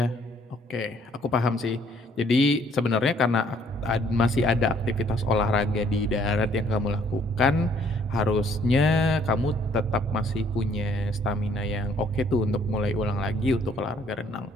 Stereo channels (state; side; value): normal; both; correlation 0.63